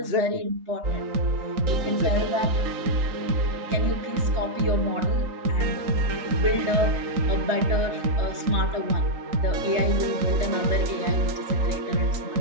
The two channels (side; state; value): left; late; 3.8 ms